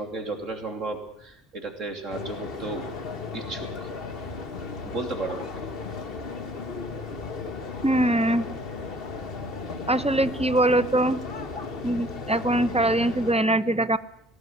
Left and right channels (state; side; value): normal; both; correlation 0.55